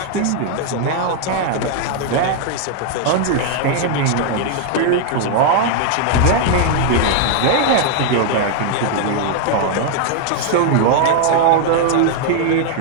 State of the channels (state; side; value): different; both; correlation 0.00